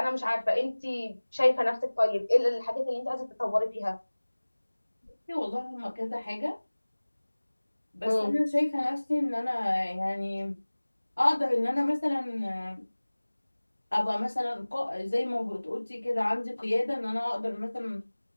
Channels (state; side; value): inverted; both; correlation -1.00